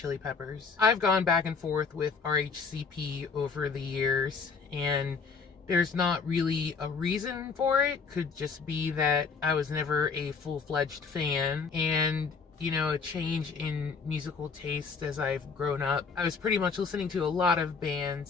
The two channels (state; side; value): quieter; right; 5.2 dB